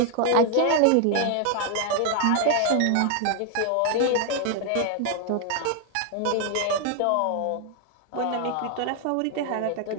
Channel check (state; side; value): different; both; correlation 0.00